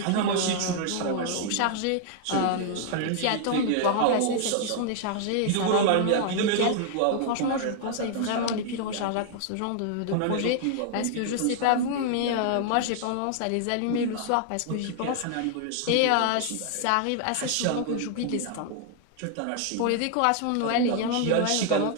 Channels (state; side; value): different; both; correlation 0.00